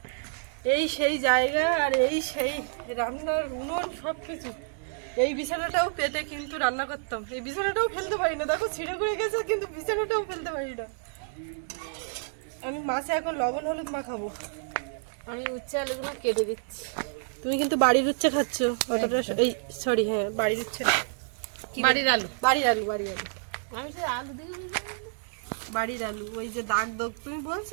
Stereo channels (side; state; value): left; silent; digital silence